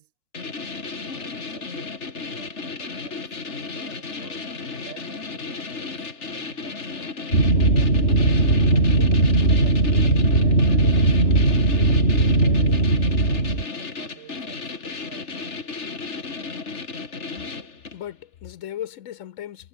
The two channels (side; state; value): right; late; 3.4 ms